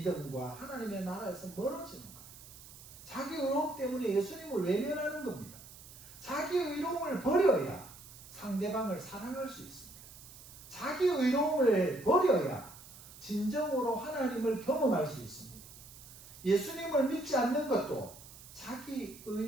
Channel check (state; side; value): noise; right; hiss, 18 dB below the sound